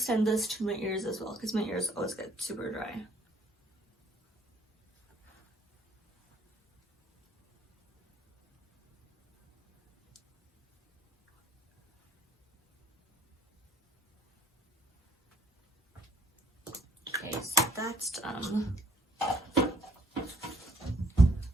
this to my ears as well, because my ears always get super dry. Okay, so that's done.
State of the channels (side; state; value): both; normal; correlation 0.63